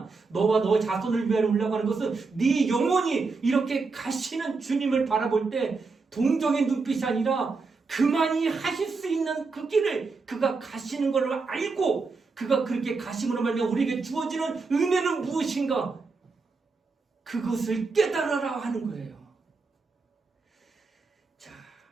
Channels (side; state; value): left; quieter; 4.3 dB